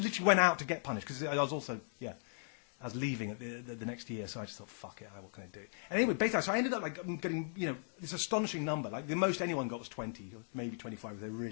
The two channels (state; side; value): silent; right; digital silence